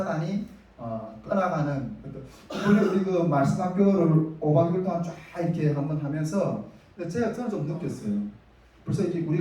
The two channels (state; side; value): identical; both; correlation 1.00